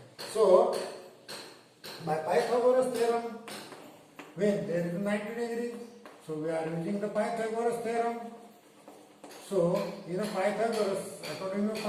So by Pythagoras theorem, when there is 90 degree, so we are using the Pythagoras theorem. So in a Pythagoras, according to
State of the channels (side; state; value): both; identical; correlation 1.00